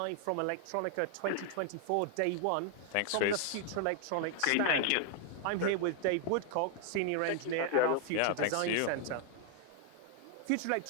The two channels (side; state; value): both; different; correlation 0.00